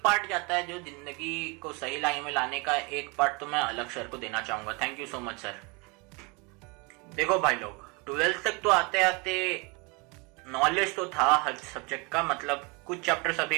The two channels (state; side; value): quieter; left; 29.2 dB